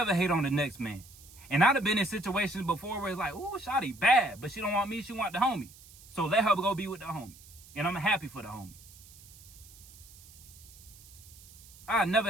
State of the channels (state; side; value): noise; right; hiss, 21 dB below the sound